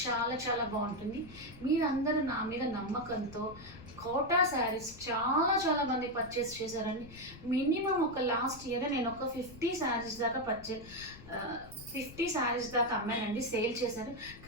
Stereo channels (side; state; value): left; noise; rumble, 17 dB below the sound